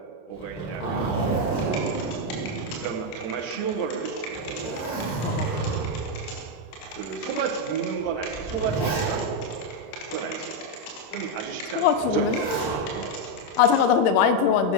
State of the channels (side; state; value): right; late; 26 ms